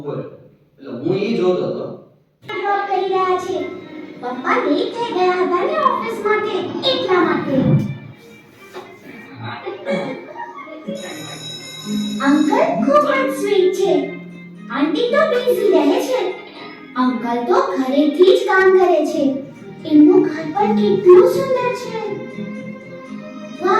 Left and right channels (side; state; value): both; identical; correlation 1.00